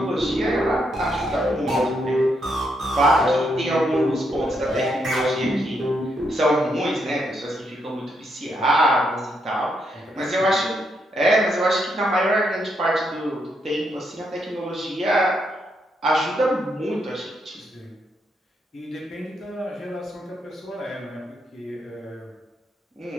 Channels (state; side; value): normal; both; correlation 0.78